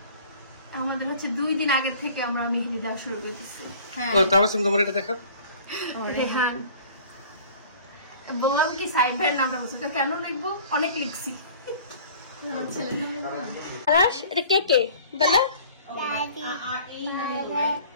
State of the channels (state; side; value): inverted; both; correlation -0.48